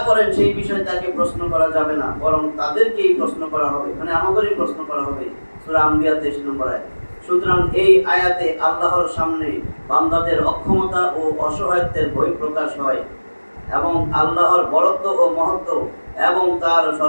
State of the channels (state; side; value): inverted; both; correlation -1.00